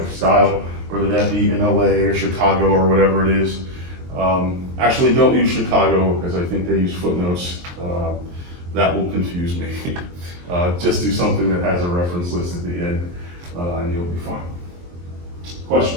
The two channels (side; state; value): left; late; 23 ms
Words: style, whether that be in LA or Chicago or whatever it is. Actually, don't use Chicago because I think they use footnotes. That will confuse me. Just do something that has a reference list at the end, and you'll be fine.